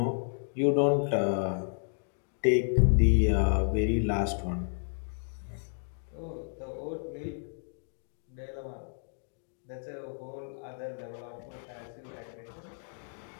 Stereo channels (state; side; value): silent; right; digital silence